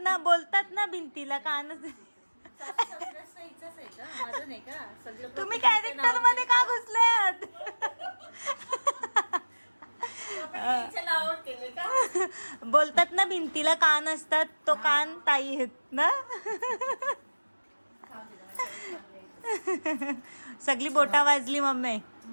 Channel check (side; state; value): both; inverted; correlation -1.00